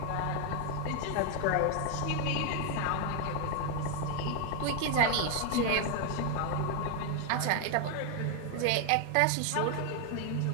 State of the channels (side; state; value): both; different; correlation 0.01